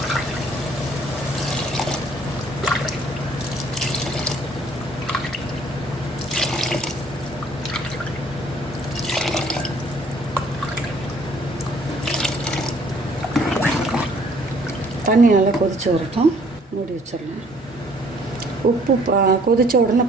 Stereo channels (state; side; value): normal; both; correlation 0.59